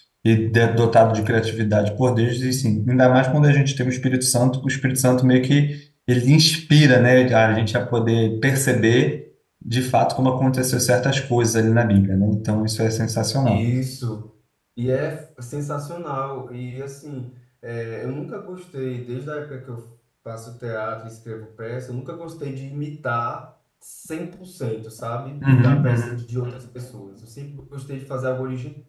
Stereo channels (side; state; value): both; identical; correlation 1.00